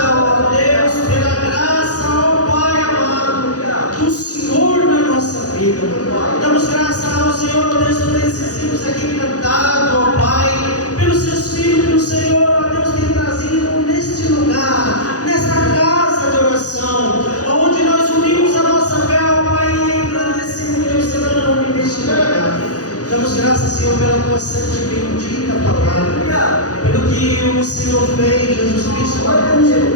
ó Deus, pela graça, ó Pai amado, do Senhor na nossa vida. Damos graças ao Senhor, ó Deus, por esses hinos aqui cantados, ó Pai, pelos seus filhos que o Senhor, ó Deus, tem trazido neste lugar, nesta casa de oração, onde nós unimos a nossa fé, ó Pai, e engrandecemos o teu santo nome neste lugar. Damos graças, Senhor, pela tua santa e bendita palavra, pelo que o Senhor fez, Jesus Cristo, na cruz do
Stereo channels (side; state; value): right; late; 0.67 ms